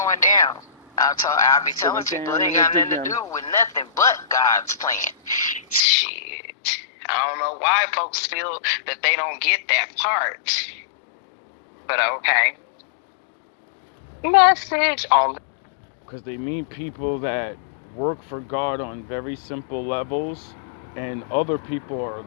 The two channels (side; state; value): right; drops out; at 5.8 s